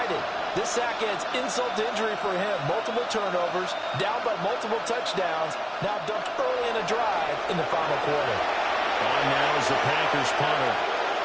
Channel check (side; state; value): both; identical; correlation 1.00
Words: This sack adds insult to injury for him. Multiple turnovers, down by multiple touchdowns. Now dumped early in a drive in the final quarter. On now is the Packers punter